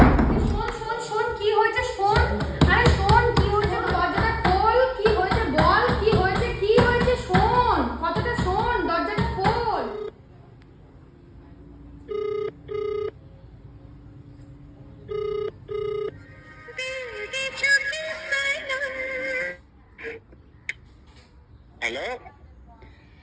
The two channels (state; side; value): identical; both; correlation 1.00